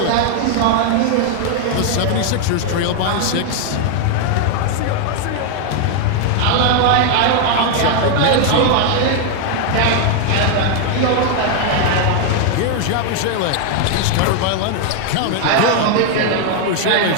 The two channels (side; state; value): both; different; correlation 0.00